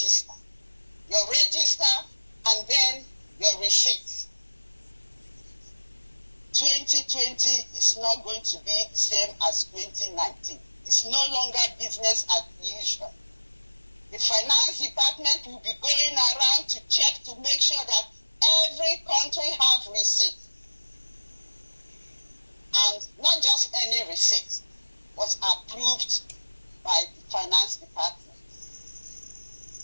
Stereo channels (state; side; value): inverted; both; correlation -1.00